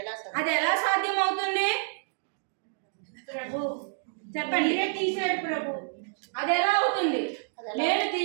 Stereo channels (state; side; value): silent; left; digital silence